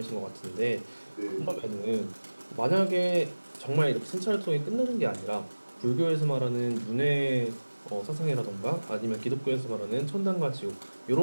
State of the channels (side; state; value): both; inverted; correlation -1.00